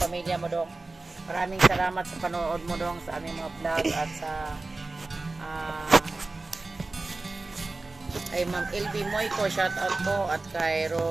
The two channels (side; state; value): left; quieter; 3.4 dB